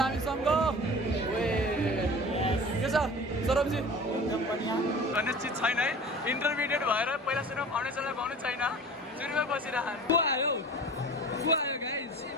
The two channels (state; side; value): normal; both; correlation 0.39